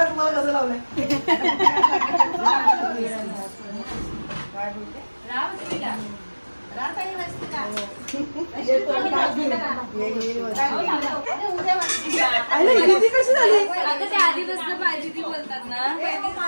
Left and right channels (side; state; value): both; inverted; correlation -1.00